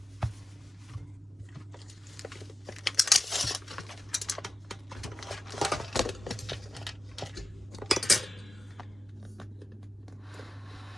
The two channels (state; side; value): normal; both; correlation 0.94